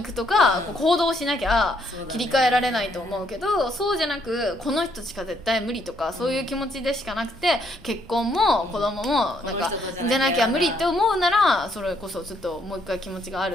くとか、こう行動しなきゃ切り替えられないと思うけど、そうじゃなくこの人しか絶対無理とか、そういう気持ちでしかなくて、結婚も子供もなんかじゃなきゃ無理って思うなら、それこそちょっともう一回気持ちがあ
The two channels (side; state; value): both; normal; correlation 0.71